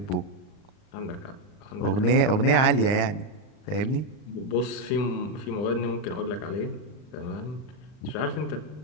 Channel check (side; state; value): right; late; 39 ms